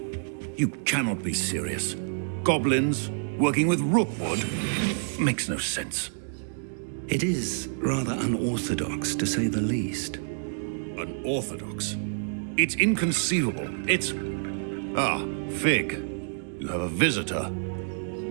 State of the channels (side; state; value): left; silent; digital silence